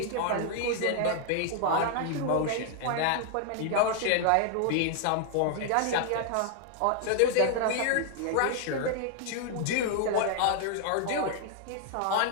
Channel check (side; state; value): both; different; correlation 0.00